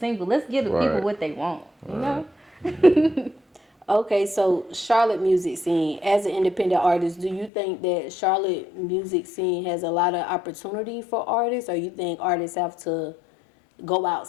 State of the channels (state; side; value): drops out; right; at 7.5 s